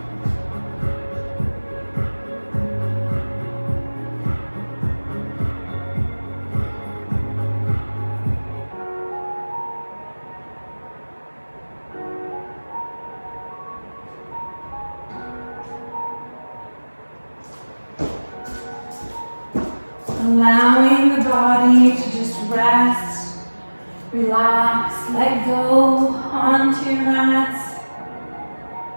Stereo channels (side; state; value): both; inverted; correlation -1.00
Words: Allowing the body to just rest, relax, let go onto your mats.